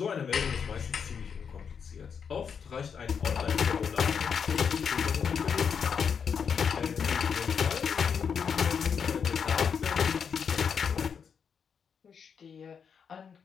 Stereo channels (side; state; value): right; quieter; 6.7 dB